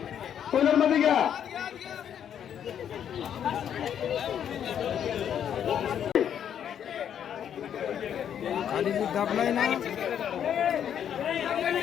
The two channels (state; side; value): quieter; right; 9.1 dB